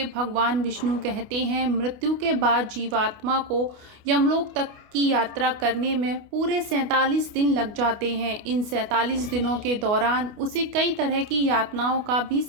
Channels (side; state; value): left; late; 29 ms